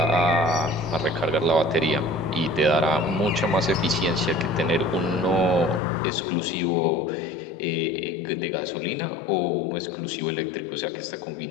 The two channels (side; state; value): right; drops out; at 5.8 s